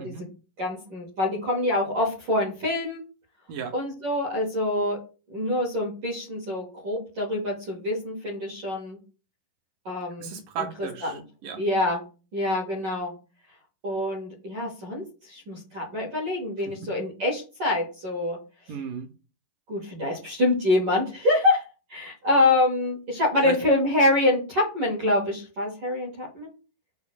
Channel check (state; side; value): late; left; 11 ms